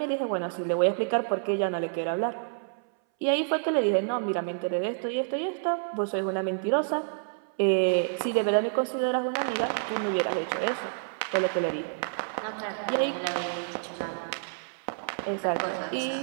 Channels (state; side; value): silent; left; 59 dB below the other